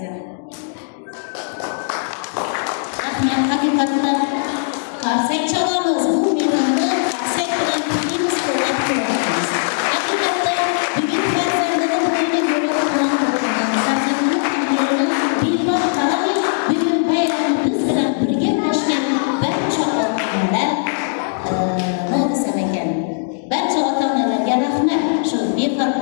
Rahmat, haqiqatan qarsak chalamiz. Bu mehrni qarsak bilan tikimiz qo'llab qo'yamiz. Haqiqatan bugun farzandini bo'yniga ko'ra quvontirgan, farzandini qadrini bemor qaramay bugun bayramni biz bilan birga ulashgan barcha ota-onalar nodisam ekan. Barcha ota-onalarga rahmat shu befarq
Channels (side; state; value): right; silent; digital silence